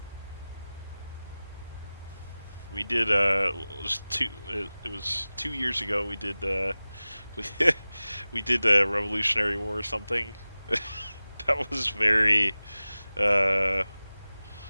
We did it was 2 years ago. We did we did Revolutionary War or something. That was very it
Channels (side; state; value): both; inverted; correlation -0.98